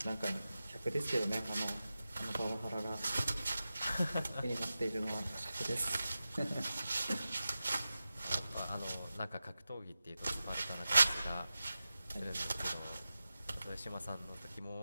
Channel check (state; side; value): inverted; both; correlation -0.93